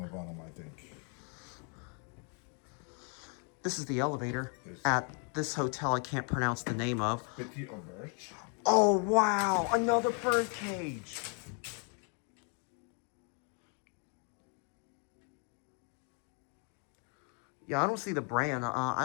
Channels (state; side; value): quieter; right; 39.2 dB